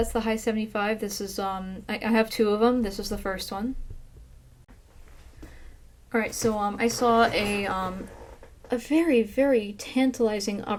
the High 75. This is, I have two of them. This is the first one. Alright, so, I saw a very, very tantalizing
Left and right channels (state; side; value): identical; both; correlation 1.00